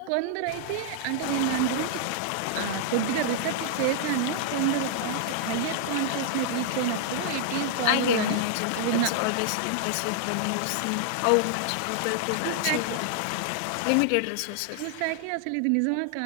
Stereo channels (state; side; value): different; both; correlation -0.01